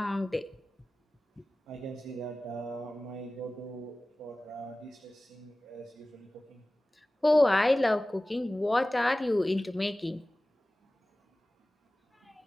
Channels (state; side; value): normal; both; correlation 0.97